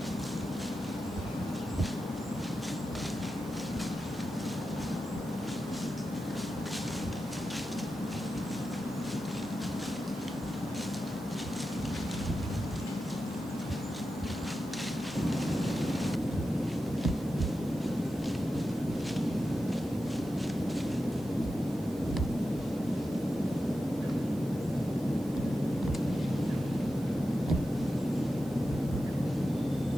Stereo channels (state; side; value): noise; right; hiss, 23 dB below the sound